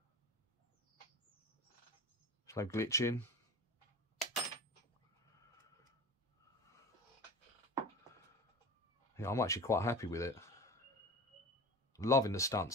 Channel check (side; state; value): both; normal; correlation 0.34